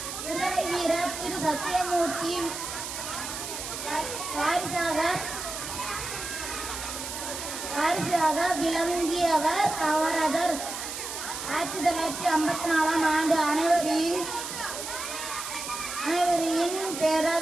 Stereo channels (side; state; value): right; noise; hiss, 7 dB below the sound